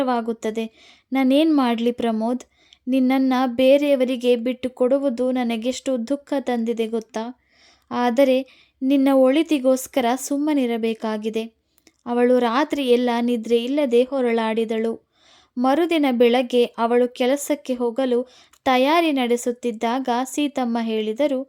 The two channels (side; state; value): both; identical; correlation 1.00